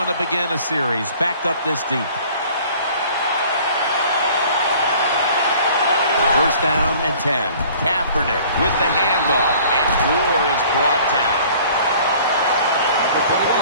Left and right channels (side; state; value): both; inverted; correlation -0.51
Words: to begin a series, backed up this deep. First down and 10. Kaepernick with the handoff, and Gore is brought down.